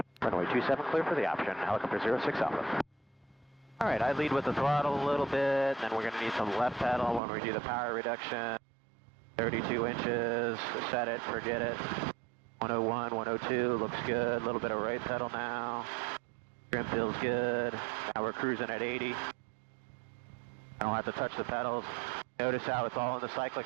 Runway 27, clear for the option. Helicopter 06 Alpha. All right, I lead with the throttle a little bit, then we're gonna need some left pedal when we do the power reduction. 32 inches, set it, forget it. 101, 102, looks good. A little bit of right pedal now. Trim feels good. Now we're cruising at 80. I don't have to touch the pedals. Notice how it's all in the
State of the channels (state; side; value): drops out; left; at 7.2 s